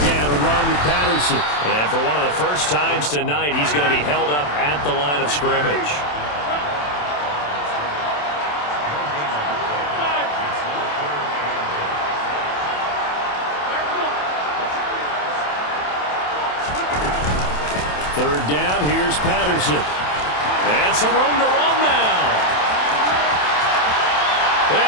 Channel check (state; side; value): late; right; 27 ms